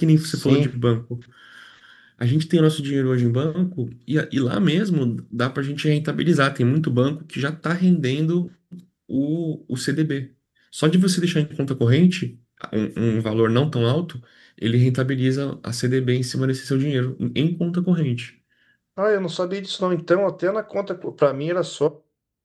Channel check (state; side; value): identical; both; correlation 1.00